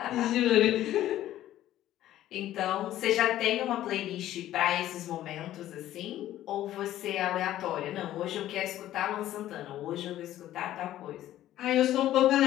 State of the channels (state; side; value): quieter; right; 13.4 dB